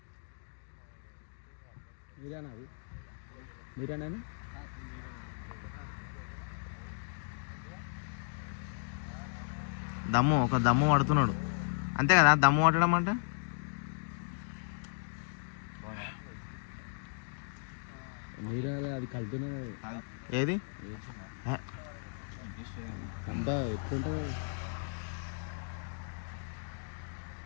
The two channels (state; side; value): silent; right; digital silence